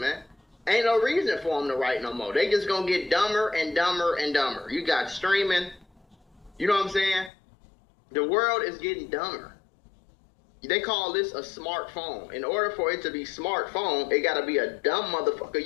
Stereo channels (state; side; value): drops out; right; at 7.3 s